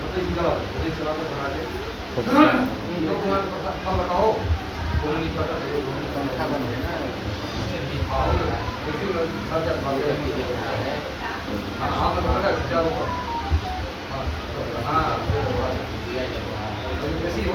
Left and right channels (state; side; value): identical; both; correlation 1.00